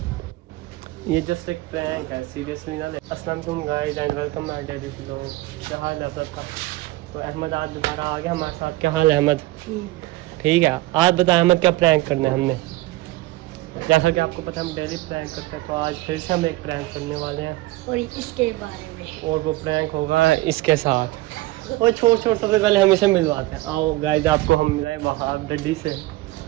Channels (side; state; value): left; quieter; 18.9 dB